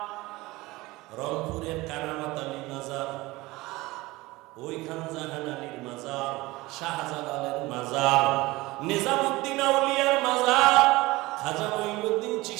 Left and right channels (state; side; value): quieter; left; 20.5 dB